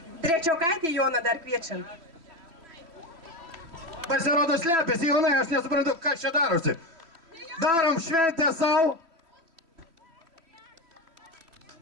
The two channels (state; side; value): late; left; 3.0 ms